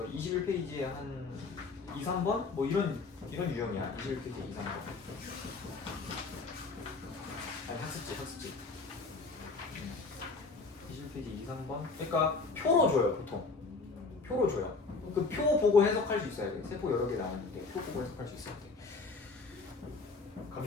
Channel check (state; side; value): quieter; right; 4.0 dB